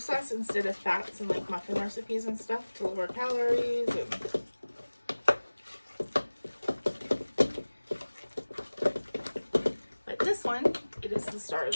instead of fats and like muffin recipes and stuff to lower calories. But this one, it is the star of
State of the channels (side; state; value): both; inverted; correlation -1.00